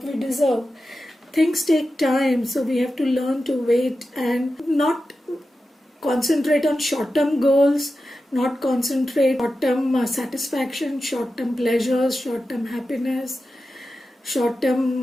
we deserve. Things take time, so we have to learn to wait and not concentrate on short-term goals, not concentrate on short-term satisfaction, short-term pleasures, short-term happiness,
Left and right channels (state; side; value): normal; both; correlation 0.92